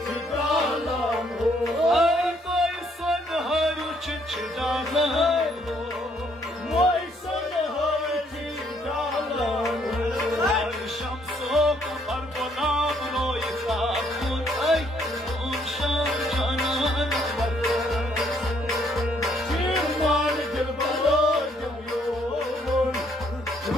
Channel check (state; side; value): normal; both; correlation 0.68